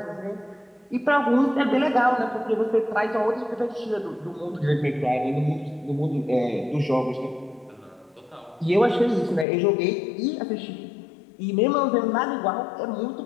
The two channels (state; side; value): drops out; right; at 9.5 s